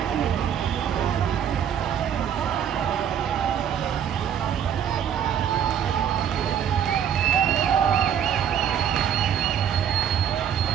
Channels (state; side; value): quieter; left; 8.8 dB